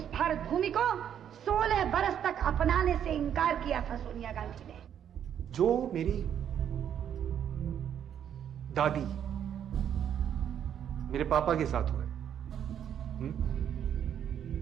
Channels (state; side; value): quieter; left; 9.3 dB